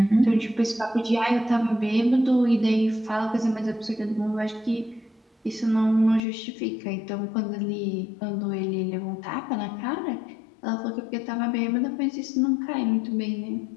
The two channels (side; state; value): right; drops out; at 6.2 s